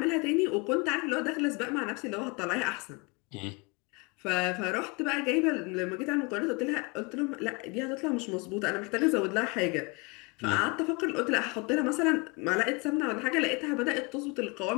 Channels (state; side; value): quieter; right; 28.9 dB